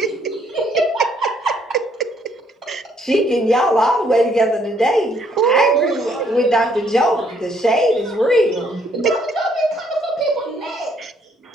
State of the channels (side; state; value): both; normal; correlation 0.67